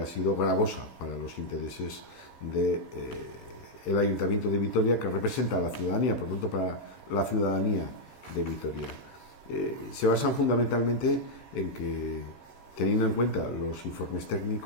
sido gravosa para los intereses del el Ayuntamiento de Vitoria, que representa a la ciudadanía, por tanto para la ciudadanía de Vitoria. Se basan fundamentalmente en que, teniendo en cuenta los informes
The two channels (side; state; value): right; late; 13 ms